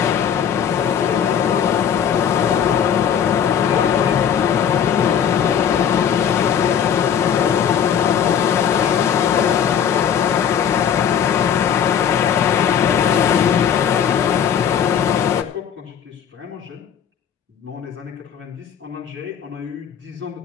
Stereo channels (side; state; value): right; quieter; 8.3 dB